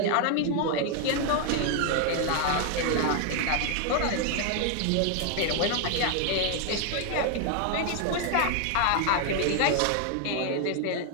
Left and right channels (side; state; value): both; different; correlation 0.00